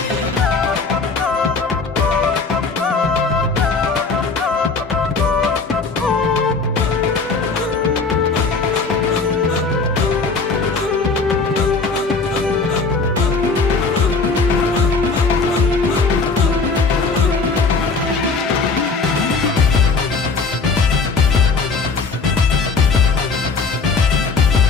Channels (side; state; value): right; quieter; 4.4 dB